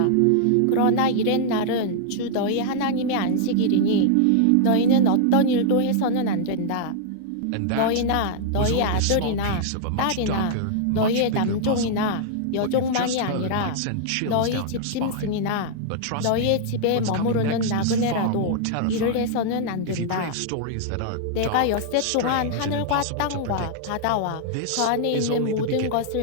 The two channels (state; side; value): different; both; correlation -0.01